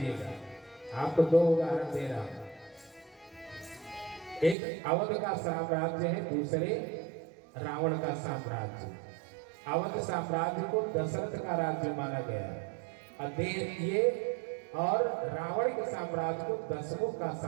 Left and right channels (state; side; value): drops out; left; at 4.5 s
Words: आपको 2 उदाहरण दे रहा हूं। एक अवध का साम्राज्य है, दूसरे रावण का साम्राज्य। अवध साम्राज्य को दशरथ का राज्य माना गया और रावण के साम्राज्य को दशमुख का